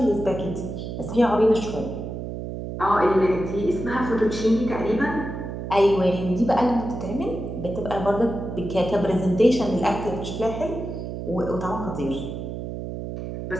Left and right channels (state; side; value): noise; right; hum, 6 dB below the sound